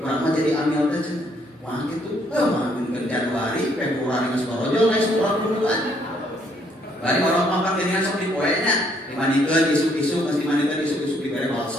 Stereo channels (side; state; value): both; normal; correlation 0.68